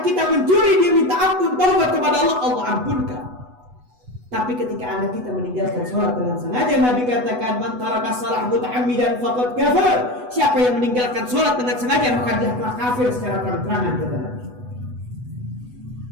kita mencuri, dia minta ampun, taubat kepada Allah, Allah ampunkan. Tapi ketika anak kita meninggalkan sholat dengan sengaja, Nabi katakan, man taraka shalah muta'ammidan faqad kafar. Siapa yang meninggalkan sholat dengan sengaja, maka dia telah kafir secara terang-terangan, kata Nabi.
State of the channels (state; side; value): late; left; 8.1 ms